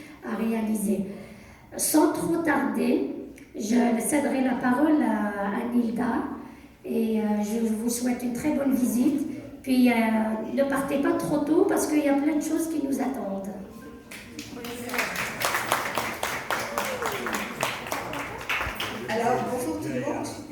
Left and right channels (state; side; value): identical; both; correlation 1.00